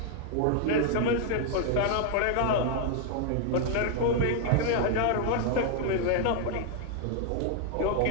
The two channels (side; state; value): both; different; correlation 0.00